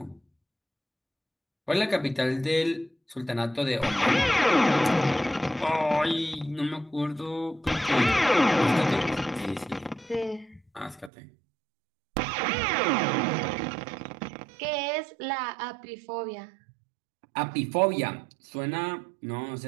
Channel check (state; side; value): drops out; left; at 11.1 s